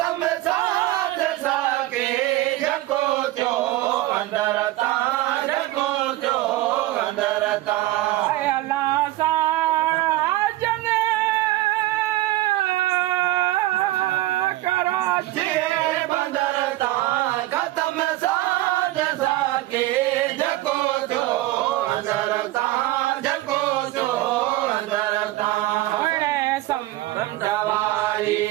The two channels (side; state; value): left; quieter; 16.9 dB